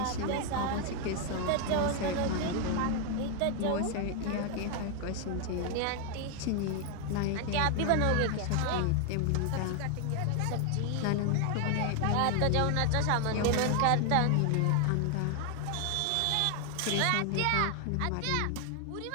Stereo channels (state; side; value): different; both; correlation 0.01